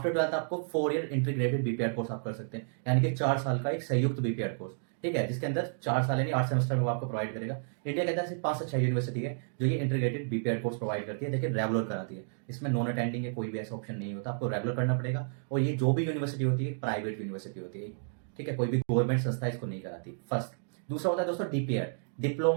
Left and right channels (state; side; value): silent; left; digital silence